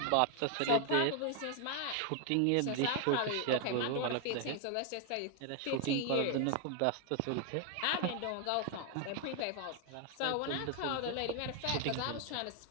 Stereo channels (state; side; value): different; both; correlation 0.00